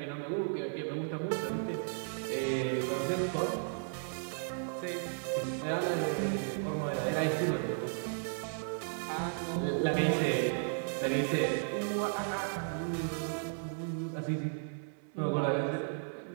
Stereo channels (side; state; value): left; silent; 55 dB below the other